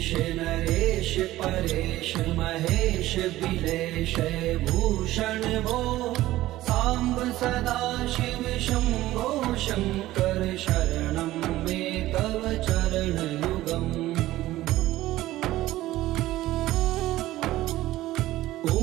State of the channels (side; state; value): left; quieter; 15.9 dB